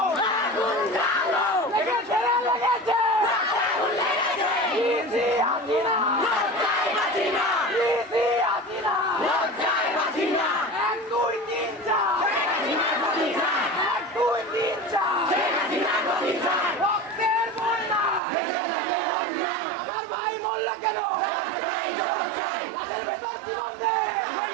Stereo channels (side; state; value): left; drops out; at 18.2 s